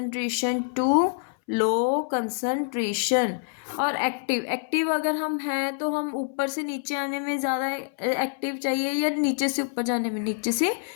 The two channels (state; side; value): silent; right; 61 dB below the other